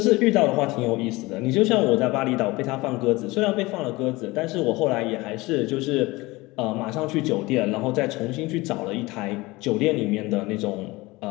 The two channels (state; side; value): quieter; right; 21.7 dB